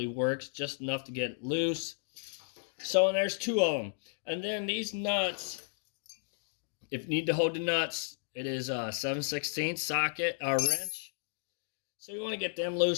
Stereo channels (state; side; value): silent; right; digital silence